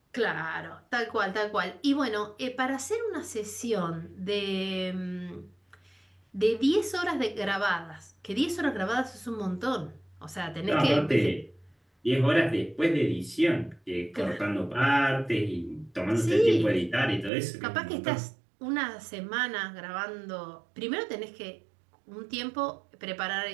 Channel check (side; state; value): left; drops out; at 17.3 s